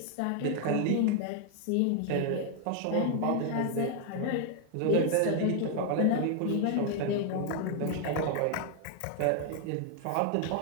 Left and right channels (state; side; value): different; both; correlation 0.00